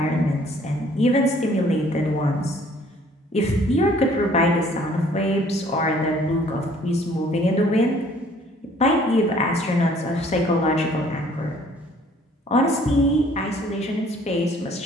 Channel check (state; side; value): normal; both; correlation 0.57